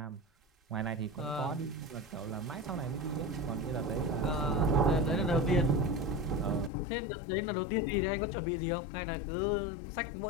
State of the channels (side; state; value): right; drops out; at 6.7 s